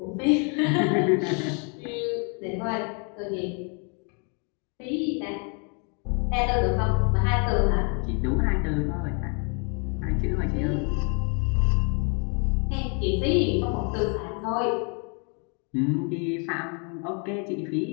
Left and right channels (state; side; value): quieter; right; 37.1 dB